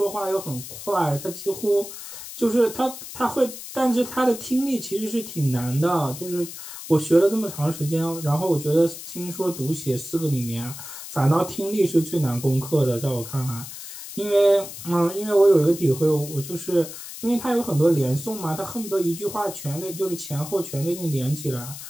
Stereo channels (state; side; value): noise; left; hiss, 11 dB below the sound